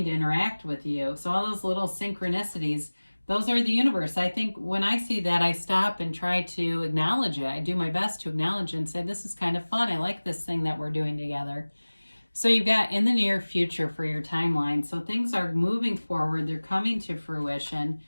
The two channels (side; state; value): both; inverted; correlation -1.00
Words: to interact with you. So all those little synchronicities, those are the universe. I think when I see that, I stop and try to acknowledge it. I do my best to acknowledge it and say, this is kind of fun. I like this thing that we're doing together. So you've got in the near future for your timeline. So things are moving forward. They're coming to fruition.